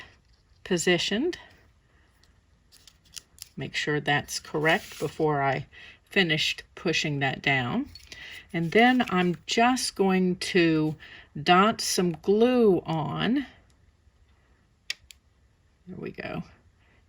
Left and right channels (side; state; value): both; identical; correlation 1.00